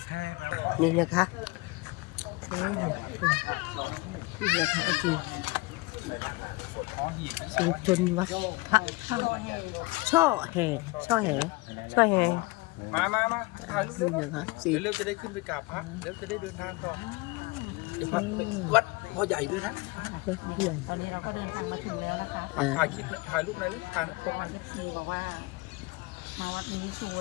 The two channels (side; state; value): right; quieter; 24.1 dB